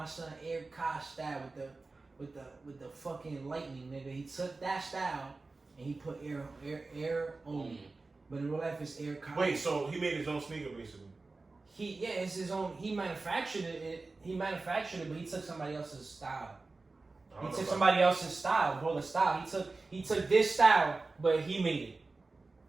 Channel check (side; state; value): left; quieter; 3.6 dB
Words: son Air Kai style with the fucking lightning, nigga. He took that style and he put air on. But in real life, it's Air Kai. Wait, so he made his own sneaker basically? It's his own. He manufactured it. But he took somebody else's style. He took somebody else's style, bro. The style. He took this style, but he made it.